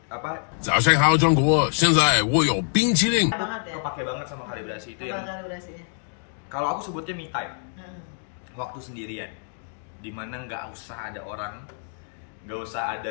早上好，中国！现在我有冰淇淋。kepake banget sama kalibrasi itu. Yang kalibrasinya? Kalau aku sebutnya me time, waktu sendirian, dimana nggak usah ada orang, nggak usah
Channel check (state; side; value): silent; right; digital silence